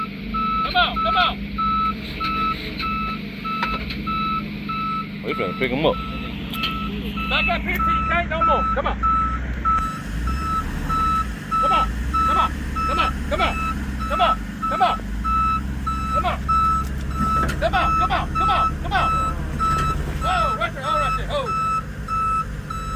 Come on. Come on. We finna pick him up. Back up here till you can't no more. Come on. Come on. Come on. Come on. Come on. Come on. Come on. Come on. Come on. Come on. Come on. Come on. Oh, right there. Oh, right there. Oh.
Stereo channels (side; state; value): both; identical; correlation 1.00